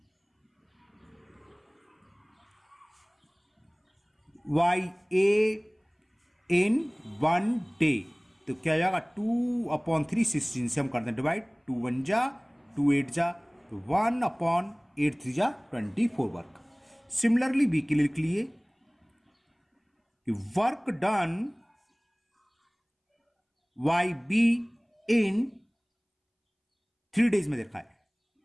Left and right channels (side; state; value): both; identical; correlation 1.00